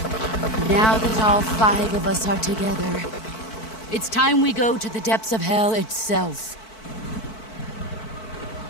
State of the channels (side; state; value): right; late; 4.5 ms